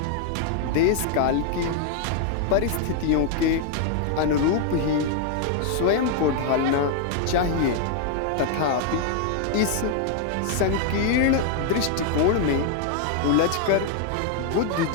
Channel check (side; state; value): both; different; correlation 0.00